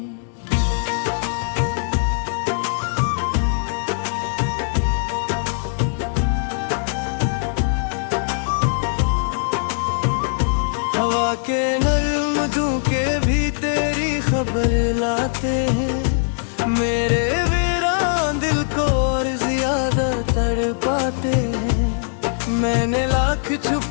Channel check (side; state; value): right; silent; digital silence